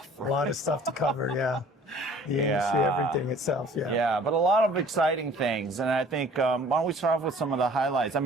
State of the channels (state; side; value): normal; both; correlation 0.51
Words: A lot of stuff to cover. The industry, everything itself. But a lot of exciting things. And I think why don't we start off with some of the highlights? I